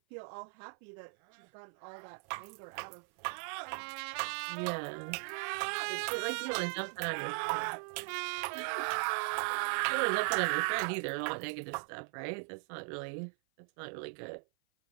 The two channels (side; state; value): left; silent; 52 dB below the other